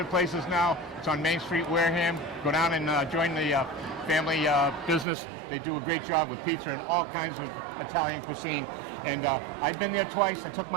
places now. It's on Main Street, Wareham. Go down and join the family business. They do a great job with pizza and all kinds of Italian cuisine. And I've been there twice. I took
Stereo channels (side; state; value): left; drops out; at 5.1 s